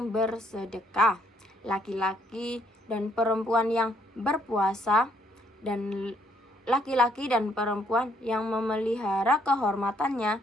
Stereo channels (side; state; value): both; normal; correlation 0.68